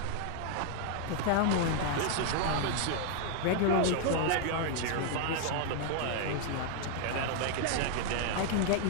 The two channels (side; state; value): both; different; correlation 0.00